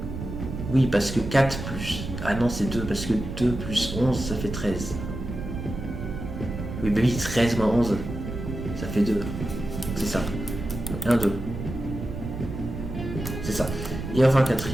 Oui, parce que 4 plus... Ah non, c'est 2, parce que 2 plus 11, ça fait 13. Oui, bah oui, 13 moins 11, ça fait 2. C'est ça. 1, 2. C'est ça. Et enfin,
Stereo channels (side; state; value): right; noise; rumble, 7 dB below the sound